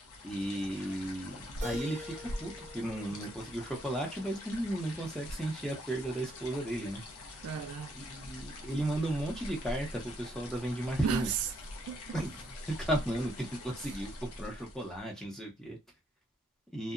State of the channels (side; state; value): both; normal; correlation 0.74